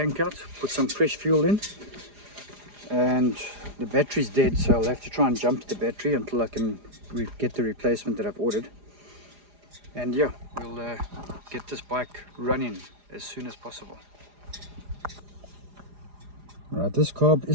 out, put some fresh fuel in, and the battery's dead, so I'll have to try and jump to the battery until I can get the replacement that I've ordered. And yeah, we'll get this bike running as soon as possible. Right, this carb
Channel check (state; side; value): late; left; 4.9 ms